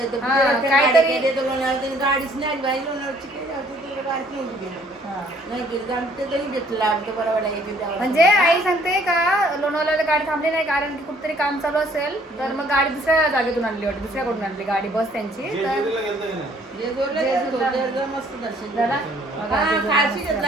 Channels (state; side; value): normal; both; correlation 0.61